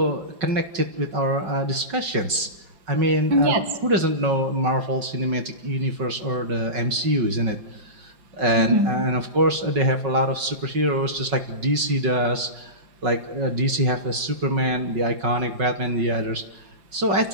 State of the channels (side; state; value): left; late; 5.4 ms